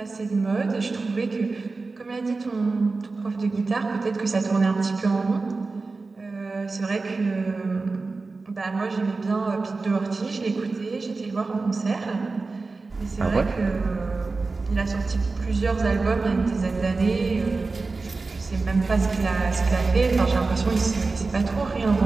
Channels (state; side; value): quieter; left; 3.8 dB